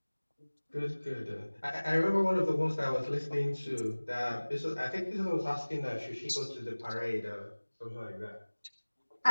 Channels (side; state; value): both; inverted; correlation -1.00